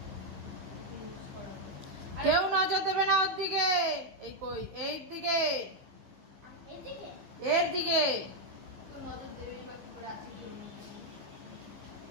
কেউ নজর দেবে না ওর দিকে। এই কই, এই দিকে, এর দিকে।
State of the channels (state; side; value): late; left; 15 ms